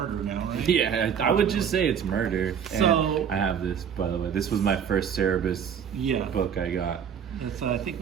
now, right? Yeah, I would just say it's murder. So and I have this, by the way. This was my first Cerebus book I got. It's I think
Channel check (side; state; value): left; quieter; 7.8 dB